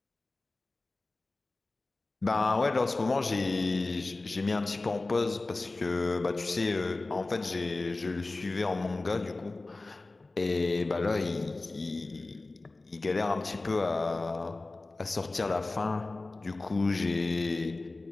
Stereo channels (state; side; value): quieter; right; 3.2 dB